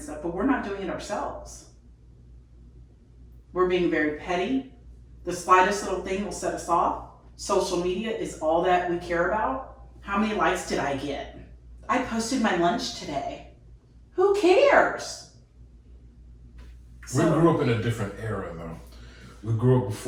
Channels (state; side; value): identical; both; correlation 1.00